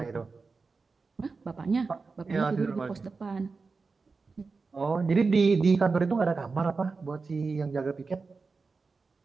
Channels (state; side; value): quieter; left; 4.3 dB